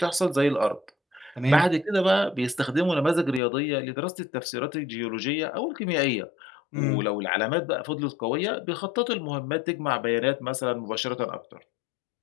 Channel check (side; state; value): right; drops out; at 3.4 s